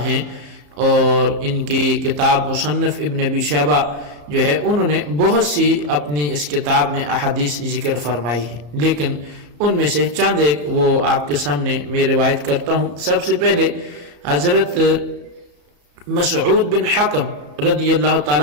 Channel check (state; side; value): late; left; 34 ms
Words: ہیں، اور ان کی کتاب مصنف ابن ابی شیبہ جو ہے انہوں نے بہت سی اپنی اس کتاب میں احادیث ذکر فرمائی ہے، لیکن ان میں سے چند ایک وہ آپ کے سامنے میں روایت کرتا ہوں۔ سب سے پہلے حضرت مسعود بن حکم رضی اللہ